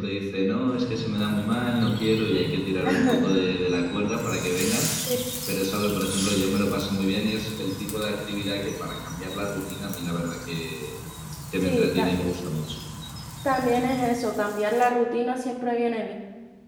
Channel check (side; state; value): both; identical; correlation 1.00